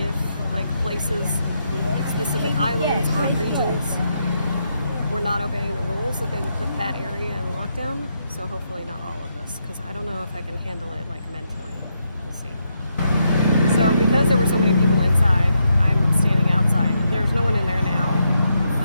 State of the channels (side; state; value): both; inverted; correlation -0.80